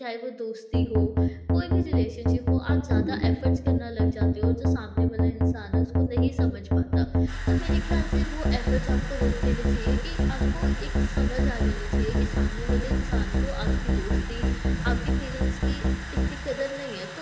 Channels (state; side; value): identical; both; correlation 1.00